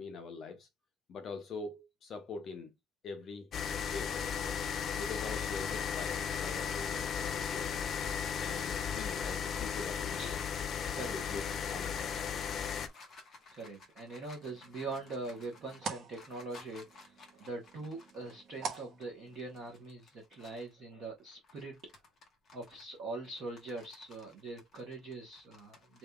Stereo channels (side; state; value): right; quieter; 4.1 dB